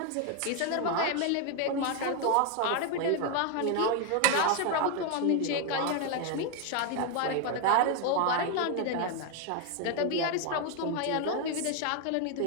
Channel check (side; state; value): both; different; correlation 0.01